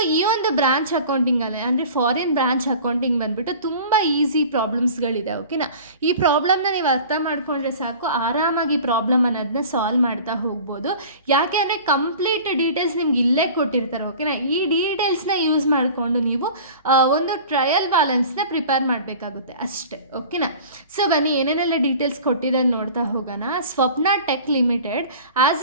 ಈ ಒಂದು ಬ್ರಾಂಚ್ ಅಕೌಂಟಿಂಗಲ್ಲಿ ಅಂದರೆ ಫಾರಿನ್ ಬ್ರಾಂಚ್ ಅಕೌಂಟಿಂಗ್ ಬಂದುಬಿಟ್ಟು ತುಂಬ ಈಸಿ ಪ್ರಾಬ್ಲಮ್ಸ್ಗಳು ಇದೆ. ಓಕೆನಾ? ಈ ಪ್ರಾಬ್ಲಮ್ನ ನೀವು ಅರ್ಥ ಮಾಡ್ಕೊಂಡ್ರೆ ಸಾಕು, ಆರಾಮಾಗಿ ಪ್ರಾಬ್ಲಮ್ ಅನ್ನೋದನ್ನ ಸಾಲ್ವ್ ಮಾಡ್ತಾ ಹೋಗ್ಬೋದು. ಯಾಕೆ ಅಂದರೆ ಕಂಪ್ಲೀಟ್ ಡೀಟೇಲ್ಸ್ ನಿಮ್ಗೆ ಇಲ್ಲೇ ಕೊಟ್ಟಿರ್ತಾರೆ. ಓಕೆನಾ? ಈ ಡೀಟೇಲ್ಸ್ನ ಯೂಸ್ ಮಾಡಿಕೊಂಡು ನೀವು ಒಂದು ಟ್ರಯಲ್ ಬ್ಯಾಲೆನ್ಸ್ನ ಪ್ರಿಪೇರ್ ಮಾಡಬೇಕಾಗುತ್ತೆ ಅಷ್ಟೇ. ಓಕೆನಾ? ಸೊ ಬನ್ನಿ, ಏನೇನೆಲ್ಲ ಡೀಟೇಲ್ಸ್ ಕೊಟ್ಟಿದೆ ನೋಡ್ತಾ ಹೋಗೋಣ. Swapna tech limited has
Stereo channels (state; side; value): inverted; both; correlation -0.41